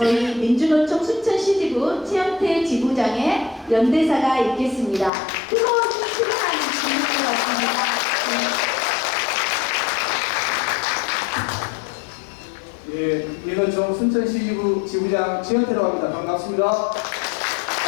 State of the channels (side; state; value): right; drops out; at 5.1 s